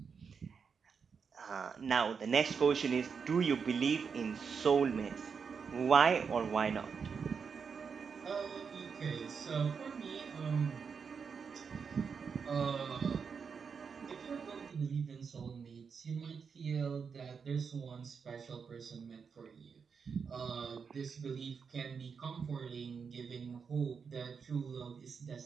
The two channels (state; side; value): quieter; left; 6.0 dB